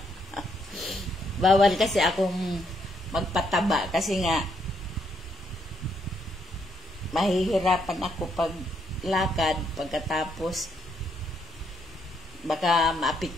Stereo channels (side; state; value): both; normal; correlation 0.74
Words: Bawal kasi akong magpataba kasi nga mahihirapan ako pag lakad, pagkatapos baka